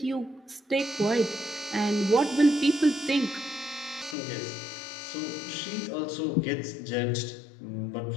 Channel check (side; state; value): right; drops out; at 4.2 s